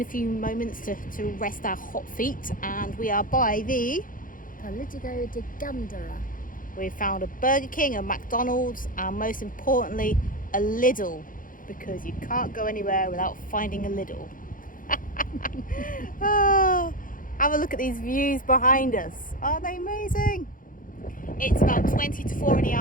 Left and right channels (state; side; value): late; right; 0.40 ms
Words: a few moments to rest our hot feet, and we are by the Politico de Gandara. We found a Burger King, a McDonald's, and most importantly, a Lidl, because you can't go anywhere without finding a Lidl. Oh, have a look at these views behind us. Aren't they amazing? It's about 20 to 4 in the